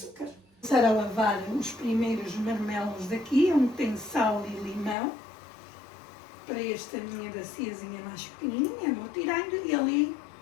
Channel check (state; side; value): drops out; right; at 5.0 s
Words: Vou começar a lavar os primeiros marmelos daqui, onde tem sal e limão. Para esta minha baciazinha mais pequenininha, vou tirando e ali